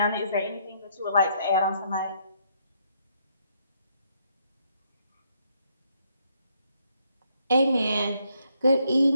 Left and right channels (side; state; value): both; inverted; correlation -0.72